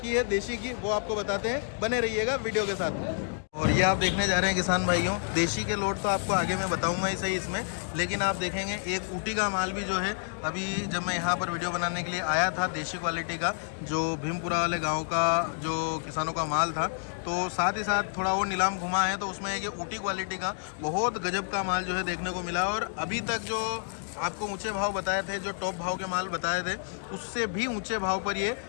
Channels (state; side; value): silent; right; digital silence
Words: है देशी की वो आपको बताते हैं, बने रहिएगा वीडियो के साथ में। और ये आप देखने जा रहे हैं किसान भाइयों, देशी के लोट तो आपको आगे मैं बताऊंगा ही सही इसमें, लेकिन आप देखेंगे एक ऊटी का माल भी जो है, अभी जब मैं यहाँ पर वीडियो बनाने के लिए आया था, देशी क्वालिटी का जो भीमपुरा वाले गांव का जो किसानों का माल था, तो साथ ही साथ थोड़ा वो नीलाम घुमा है तो उसमें एक ऊटी क्वालिटी का बहुत गजब का माल जो है देखने को मिला। और अभी तक जो आपको ऊंचे भाव बताए थे, जो टॉप भाव के माल बताए थे, उससे भी ऊंचे भाव पर ये